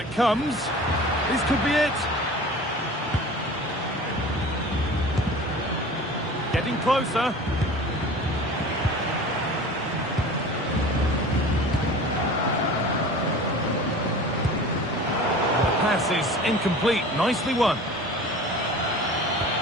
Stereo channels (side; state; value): both; normal; correlation 0.39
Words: comes. This could be it. Getting closer. Pass is incomplete. Nicely won.